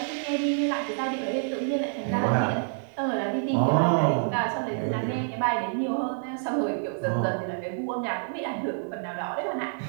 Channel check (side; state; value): left; silent; digital silence